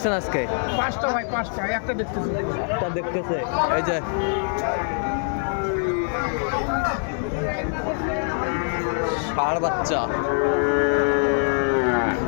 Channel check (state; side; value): silent; right; 63 dB below the other